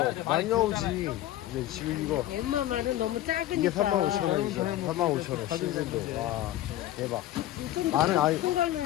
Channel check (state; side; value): quieter; right; 14.0 dB